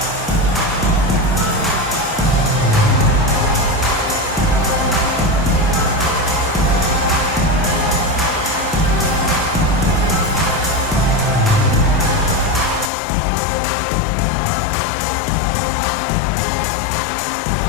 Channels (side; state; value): right; drops out; at 12.9 s